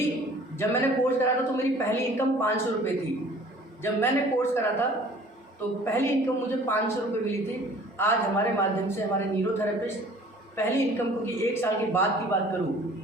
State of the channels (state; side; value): normal; both; correlation 0.50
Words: जब मैंने कोर्स करा था तो मेरी पहली इनकम 500 रुपये थी। जब मैंने कोर्स करा था तो पहली इनकम मुझे 500 रुपये मिली थी। आज हमारे माध्यम से हमारे न्यूरोथेरेपिस्ट पहली इनकम, क्योंकि 1 साल के बाद की बात